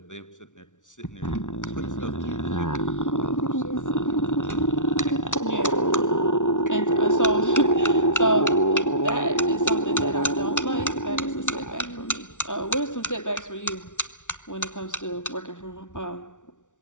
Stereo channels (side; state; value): right; late; 0.86 ms